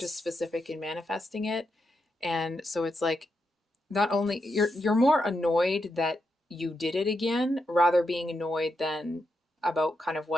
as specific in manifesting it. And so it's like not only you're more annoyed that you did it again, rather being annoyed than about kind of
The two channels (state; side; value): normal; both; correlation 0.84